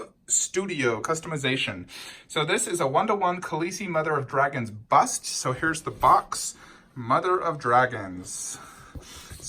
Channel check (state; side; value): identical; both; correlation 1.00